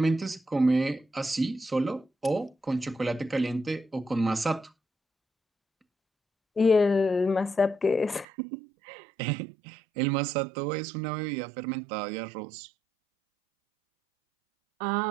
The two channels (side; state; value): left; drops out; at 8.2 s